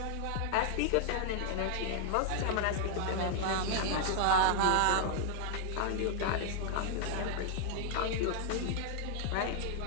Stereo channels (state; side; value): different; both; correlation 0.00